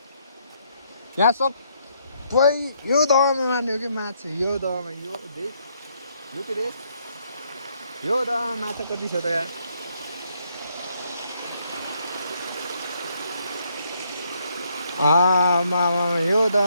यहाँ सबै यो दहमा मार्ने हो कि माछा। यो दहमा यो देख यो के रे यो दहमा माछा कति छ त यार। यो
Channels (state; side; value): inverted; both; correlation -0.72